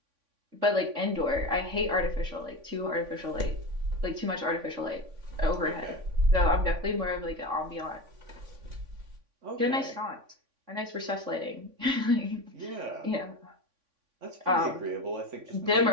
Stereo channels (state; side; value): late; left; 3.5 ms